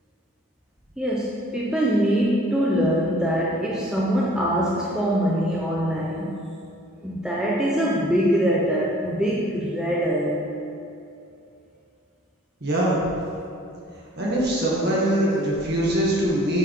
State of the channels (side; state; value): both; normal; correlation 0.55